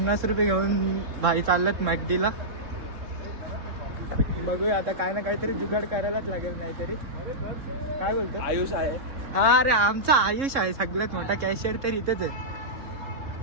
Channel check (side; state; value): left; late; 3.7 ms